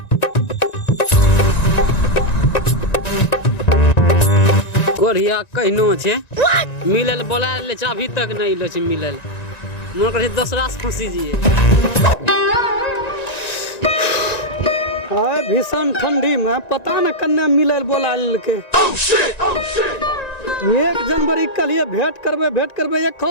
कोरिया कहनो छे मिलल बोला ले अभी तक नहीं लो छे मिलल मन करे दूसरा से फंसी जिए भीषण ठंडी में पता न कन्ने मिलल बोला लेके 1 जनवरी के लिए भेंट करबे 1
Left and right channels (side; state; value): right; late; 1.9 ms